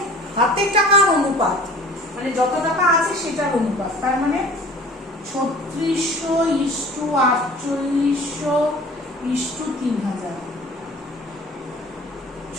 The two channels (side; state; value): both; normal; correlation 0.45